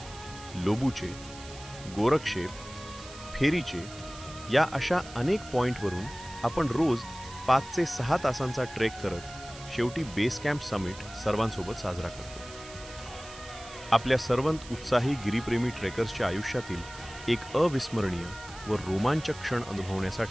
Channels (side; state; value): right; noise; hiss, 16 dB below the sound